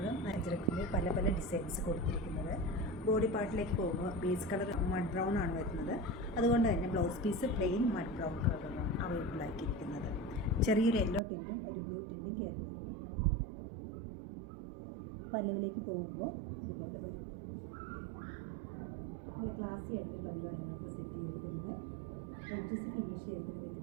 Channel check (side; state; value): left; drops out; at 11.2 s